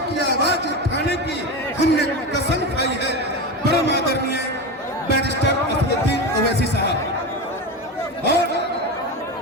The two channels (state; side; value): normal; both; correlation 0.21